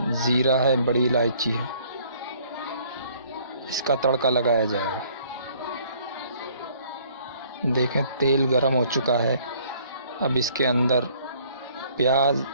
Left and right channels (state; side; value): inverted; both; correlation -0.59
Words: ज़ीरा है, बड़ी इलायची है, इसका तड़का लगाया जाएगा। देखें तेल गरम हो चुका है। अब इसके अंदर प्याज,